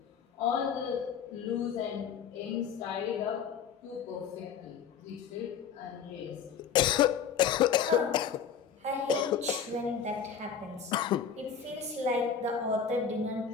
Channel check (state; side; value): quieter; right; 7.1 dB